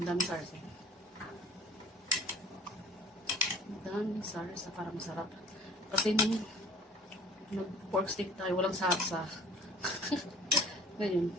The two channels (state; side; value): normal; both; correlation 0.48